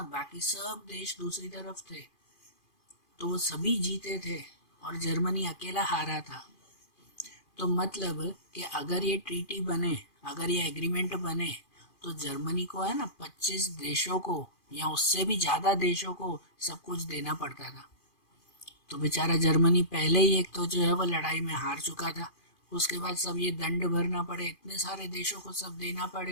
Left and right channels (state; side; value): late; right; 2.4 ms